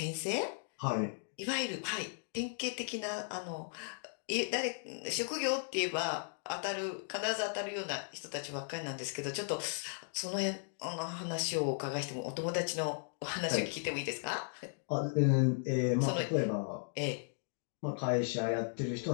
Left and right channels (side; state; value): right; silent; digital silence